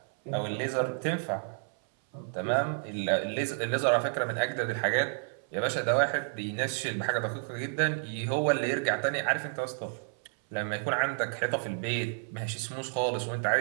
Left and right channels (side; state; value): left; silent; 57 dB below the other